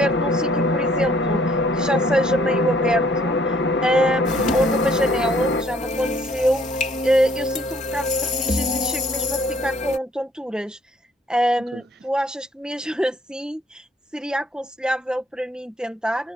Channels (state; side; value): normal; both; correlation 0.62